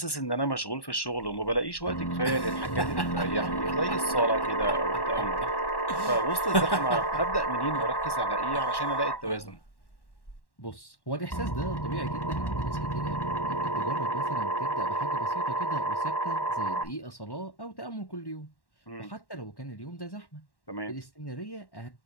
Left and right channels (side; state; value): right; late; 1.1 ms